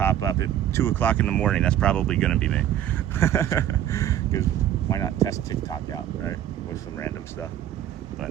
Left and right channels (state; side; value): quieter; left; 11.2 dB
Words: up at 2 o'clock in the morning, that's probably gonna be me. Because why not test TikTok out, right? With some random stuff.